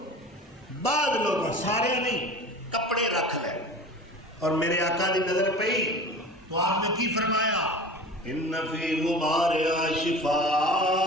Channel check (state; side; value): normal; both; correlation 0.37